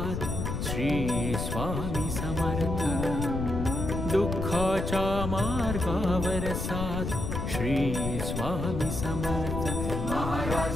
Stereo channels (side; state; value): left; noise; rumble, 3 dB below the sound